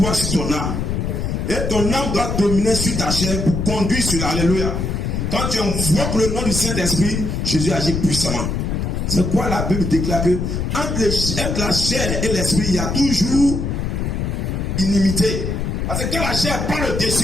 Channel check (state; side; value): noise; left; rumble, 2 dB below the sound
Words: Sur ton âme. Et ton âme doit dominer sur ta chair pour conduire sur l'Alléluia. Quand tu invoques le nom du Saint-Esprit, Jésus agit puissamment. C'est quoi la Bible déclare que entre la chair et l'esprit, il y a toujours inimité. Parce que quand la chair prend le